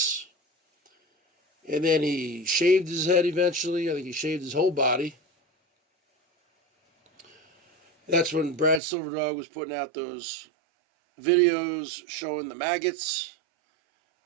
And then he shaved his head eventually. I think he shaved his whole body. That's when Brad Silverdog was putting out those videos showing the maggots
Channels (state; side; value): drops out; left; at 8.8 s